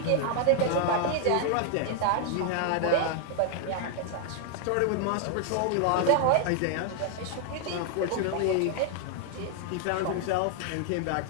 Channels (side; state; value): both; different; correlation 0.00